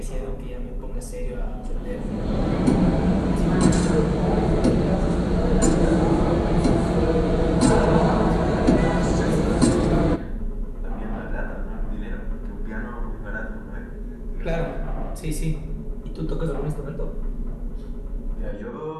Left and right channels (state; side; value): identical; both; correlation 1.00